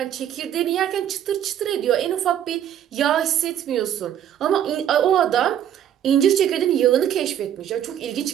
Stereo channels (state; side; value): quieter; left; 10.3 dB